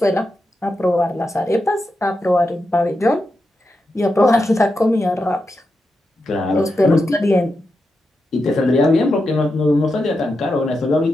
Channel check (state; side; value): normal; both; correlation 0.88